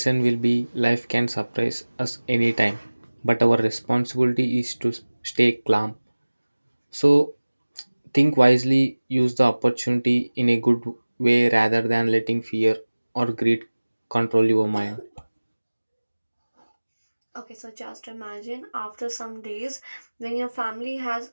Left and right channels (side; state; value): both; inverted; correlation -1.00